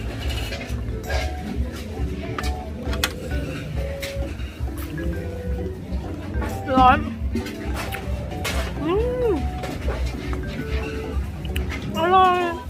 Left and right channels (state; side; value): identical; both; correlation 1.00